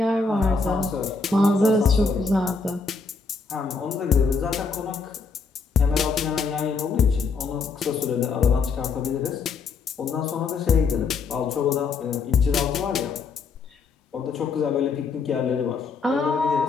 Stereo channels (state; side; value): quieter; right; 4.7 dB